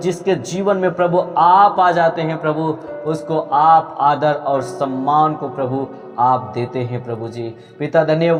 जीवन में प्रभु आप आ जाते हैं प्रभु, उसको आप आदर और सम्मान को प्रभु आप देते हैं प्रभु जी। पिता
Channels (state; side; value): identical; both; correlation 1.00